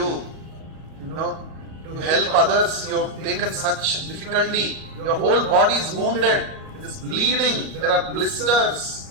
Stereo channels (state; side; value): late; left; 37 ms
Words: You know, to help others, you have taken such difficulty. Your whole body is wounded. It is bleeding. There are